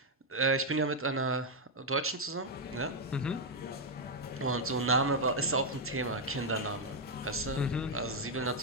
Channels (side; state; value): both; normal; correlation 0.00